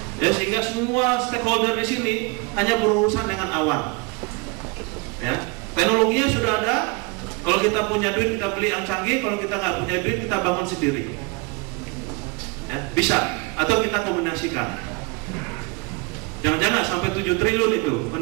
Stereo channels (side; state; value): left; quieter; 28.9 dB